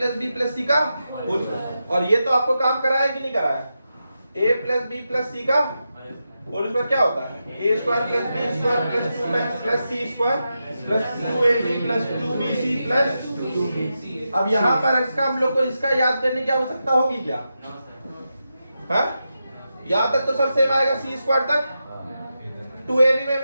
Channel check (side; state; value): both; inverted; correlation -0.88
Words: बी प्लस सी का होल स्क्वायर, और ये तो आपको काम कराया कि नहीं कराया, A plus B plus C का होल स्क्वायर क्या होता है, A square plus B square plus 2 plus C square plus 2ab plus 2bc plus. अब यहाँ पर इसका हम लोग को इसका याद करने की आवश्यकता होगी क्या, हाँ? यहाँ तक तो सर सेम आएगा, सी स्क्वायर तक 2ab में